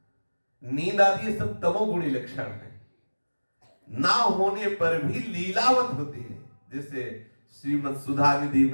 नींद आदि ये सब तमोगुणी लक्षण है, ना होने पर भी लीलावत होती है। जैसे श्रीमद् सुधा निधि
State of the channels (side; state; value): both; inverted; correlation -1.00